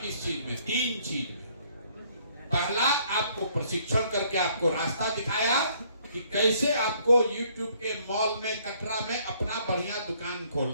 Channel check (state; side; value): inverted; both; correlation -0.64